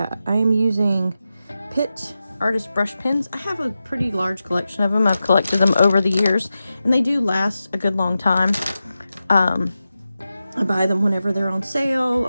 I am using Pitt artist brush pens. I have a pretty large collection of them. I've collected them over the years, and they do last a good long time. I buy them whenever they're on sale,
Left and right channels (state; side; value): inverted; both; correlation -0.92